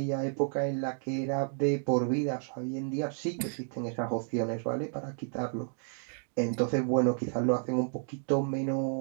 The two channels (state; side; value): silent; left; 57 dB below the other